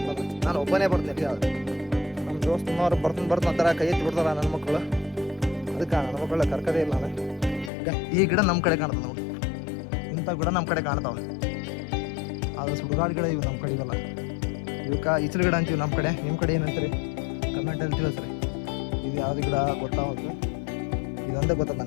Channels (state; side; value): drops out; right; at 7.7 s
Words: ಅಂತ. ನಾನು ಒಬ್ಬನೇ ಬರ್ತೀನಿ. ಯಾವ್ದು ನಮ್ಮ ದೋಸ್ತನವ್ರು ಬರ್ತಾನೆ ಕೈ ಎತ್ತಿ ಬಿಡ್ತಾರ ನನ್ನ ಮಕ್ಕಳು. ಅದಕ್ಕೆ ನನ್ನ ಮಕ್ಕಳ ಕರ್ಕದೇ ಇಲ್ಲ ನಾನು. ಈ ಗಿಡ ನಮ್ಮ ಕಡೆ ಕಾಣ್ತದೆ ನೋಡಿ, ಇಂಥ ಗಿಡ ನಮ್ಮ ಕಡೆ ಕಾಣ್ತಾವ. ಅದು ಸುಡುಗಾಡು ಗಿಡ ಇವು ನಮ್ಮ ಕಡೆ ಇವೆಲ್ಲ. ಇವಕ್ಕೆ ಈಚಲು ಗಿಡ ಅಂತೀವಿ ನಮ್ಮ ಕಡೆ. ನಿಮ್ಮ ಕಡೆ ಏನಂತೀರಿ ಕಮೆಂಟಲ್ಲಿ ತಿಳಿಸ್ರಿ. ಇದು ಯಾವ್ದು ಗಿಡ ಗೊತ್ತಾಗುತ್ತೆ. ಇದೊಂದೇ ಗೊತ್ತದ